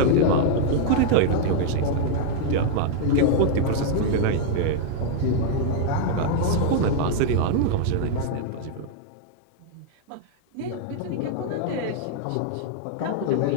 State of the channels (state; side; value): different; both; correlation 0.00